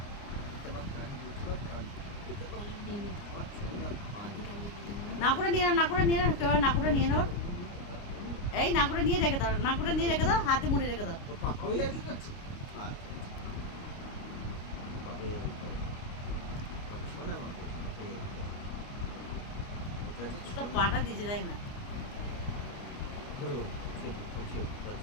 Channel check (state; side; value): late; right; 29 ms